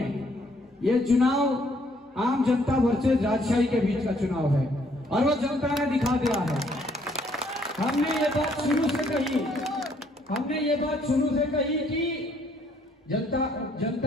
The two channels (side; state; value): both; normal; correlation 0.66